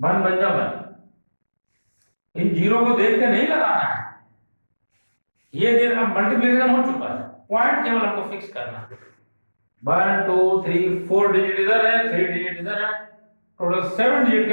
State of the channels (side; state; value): both; inverted; correlation -1.00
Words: बन जा 1। इन जीरो को देख के नहीं लगाना है, ये दिन अब मल्टीप्लीकेशन हो चुका है, पॉइंट केवल हमको फिक्स करना है। 1 2 3 4 डिजिट इधर है, 3 डिजिट इधर है, टोटल 7 डिजिट के